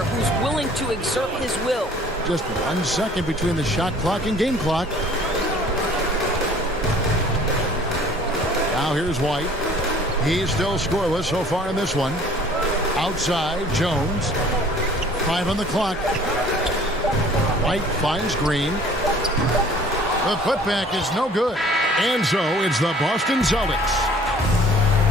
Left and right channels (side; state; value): both; normal; correlation 0.52